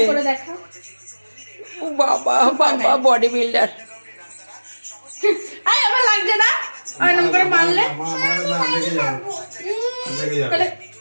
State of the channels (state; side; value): inverted; both; correlation -1.00